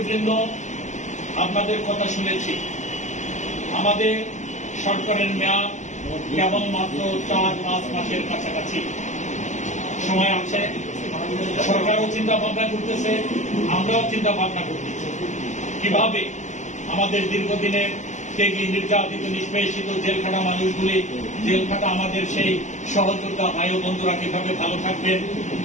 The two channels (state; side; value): late; right; 0.34 ms